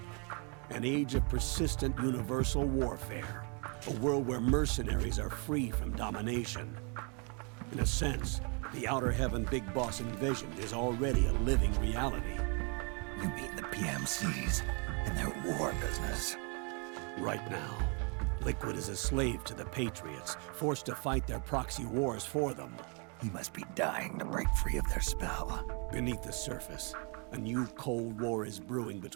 An age of persistent universal warfare. A world where mercenaries are free from domination. In a sense, the Outer Heaven Big Boss envisioned is already a living reality. You mean the PMCs and their war business? Right now, Liquid is a slave to the Patriots, forced to fight their proxy wars for them. He must be dying to break free of their spell. Beneath the surface, a new Cold War is brewing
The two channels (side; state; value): left; quieter; 35.1 dB